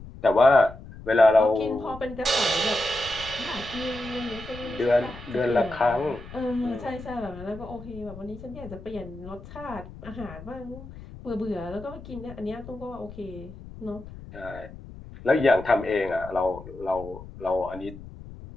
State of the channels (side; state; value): left; noise; rumble, 15 dB below the sound